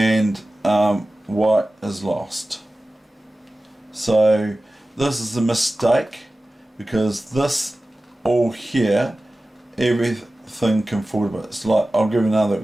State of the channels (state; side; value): normal; both; correlation 0.96